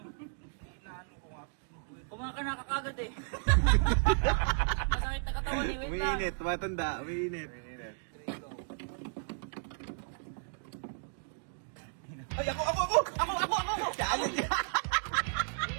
ko nga. Kumain ka na kakagad eh. Masakit na katawan eh. Wait lang. Umiinit, matanda, umiinit. Ay, ako! Challenge yan!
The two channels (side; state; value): left; silent; digital silence